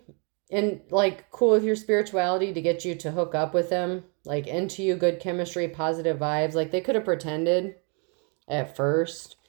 cool with your spirituality to get you to hook up with them. Like, into you, good chemistry, positive vibes. Like, they could have pretended at first.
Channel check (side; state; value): left; quieter; 36.0 dB